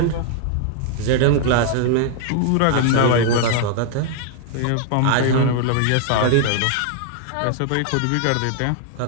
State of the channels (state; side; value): different; both; correlation 0.00